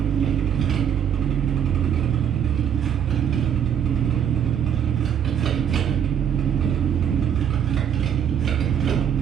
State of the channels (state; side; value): quieter; left; 8.7 dB